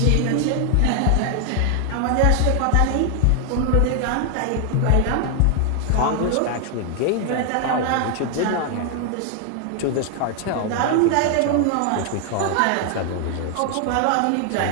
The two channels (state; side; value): different; both; correlation 0.00